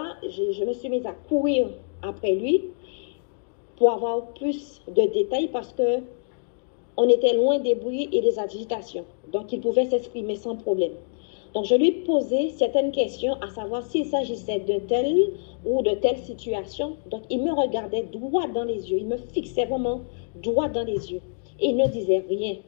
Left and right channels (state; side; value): silent; right; digital silence